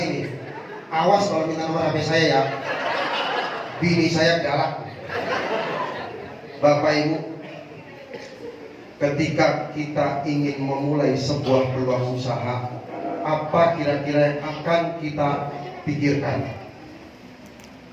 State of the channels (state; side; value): identical; both; correlation 1.00